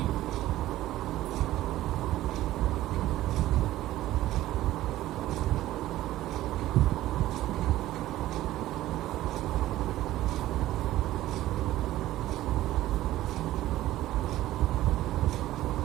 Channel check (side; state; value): left; quieter; 15.1 dB